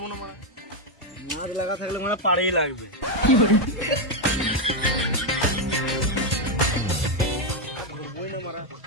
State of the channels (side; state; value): both; normal; correlation 0.03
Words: না, মাছ লাগা থাকলে মানে পাড়েই লাগবে।